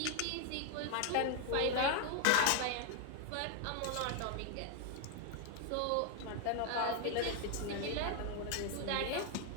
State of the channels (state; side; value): different; both; correlation 0.00